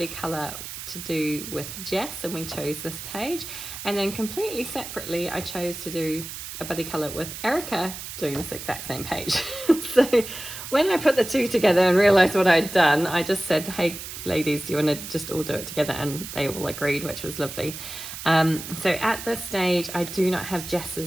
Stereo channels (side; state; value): right; noise; hiss, 10 dB below the sound